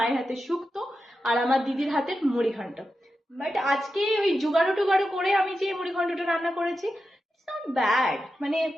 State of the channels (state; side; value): normal; both; correlation 0.90